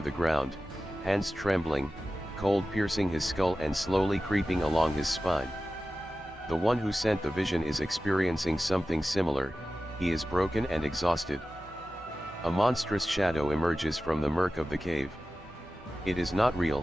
the ground, hands trembling, cold piercing his skull and slowly creeping along his spine. The one who sent the vision is experiencing something similar, he is broken and exhausted. A monstrous shadow emerges from the murk of the cave. It is not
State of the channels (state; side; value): normal; both; correlation 0.95